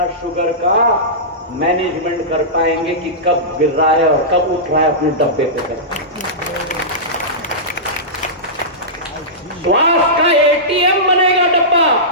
शुगर का मैनेजमेंट कर पाएंगे कि कब गिर रहा है और कब उठ रहा है अपने डब्बे पे कर। स्वास्थ्य का एटीएम बनेगा डब्बा।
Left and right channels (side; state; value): both; normal; correlation -0.17